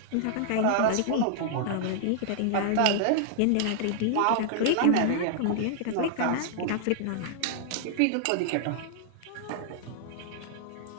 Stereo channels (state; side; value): different; both; correlation -0.01